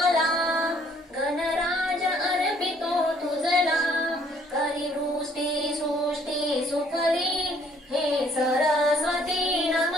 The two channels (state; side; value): normal; both; correlation 0.63